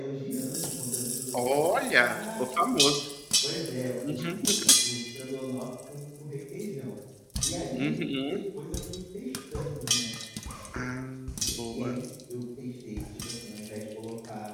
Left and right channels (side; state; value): both; identical; correlation 1.00